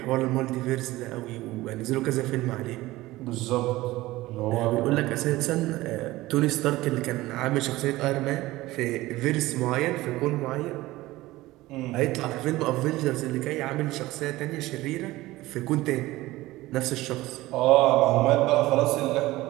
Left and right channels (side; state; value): left; quieter; 18.1 dB